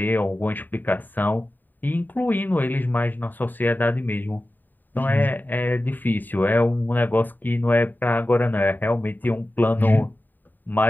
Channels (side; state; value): right; late; 0.089 ms